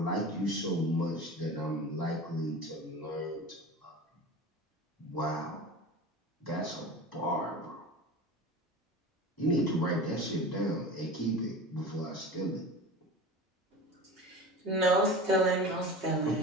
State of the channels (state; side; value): normal; both; correlation 0.33